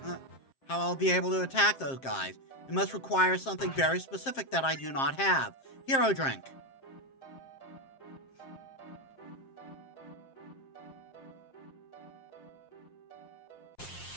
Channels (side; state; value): right; late; 7.5 ms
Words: I'll be able to attack those guys. It must require something very specific that I do not have. Hero drink.